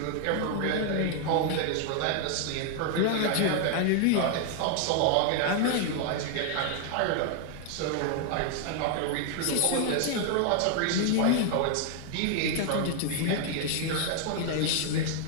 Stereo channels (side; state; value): both; different; correlation 0.00